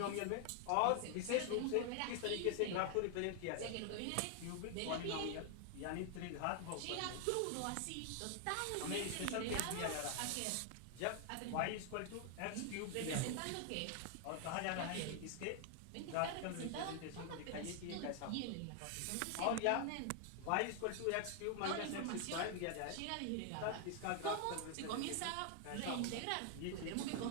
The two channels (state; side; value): different; both; correlation 0.00